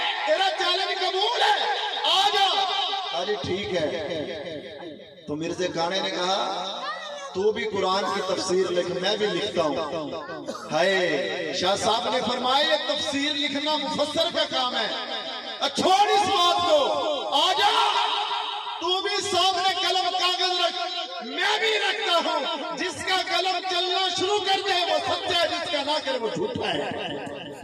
تیرا چیلنج قبول ہے، آ جا۔ ارے ٹھیک ہے۔ تو مرزا کانے نے کہا تو بھی قرآن کی تفسیر لکھ، میں بھی لکھتا ہوں۔ ہائے شاہ صاحب نے فرمایا یہ تفسیر لکھنا مفسر کا کام ہے، چھوڑ اس بات کو، آ جا تو بھی سامنے قلم کاغذ رکھ، میں بھی رکھتا ہوں، جس کا قلم چلنا شروع کر دے وہ سچا ہے، جس کا نہ کرے وہ جھوٹا ہے۔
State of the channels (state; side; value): identical; both; correlation 1.00